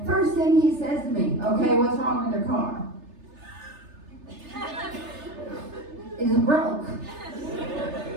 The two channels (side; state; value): left; late; 3.3 ms